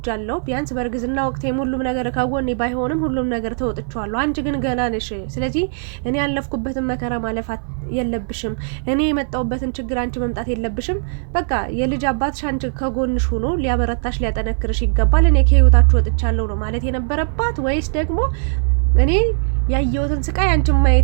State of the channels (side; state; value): left; silent; 60 dB below the other